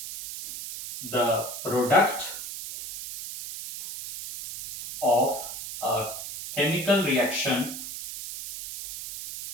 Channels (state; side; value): noise; right; hiss, 9 dB below the sound